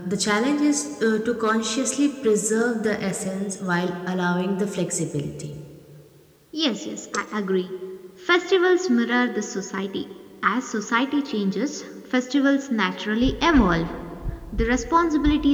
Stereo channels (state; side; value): identical; both; correlation 1.00